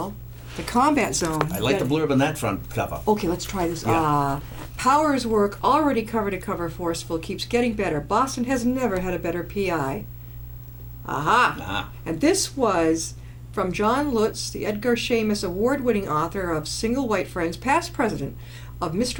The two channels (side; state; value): both; identical; correlation 1.00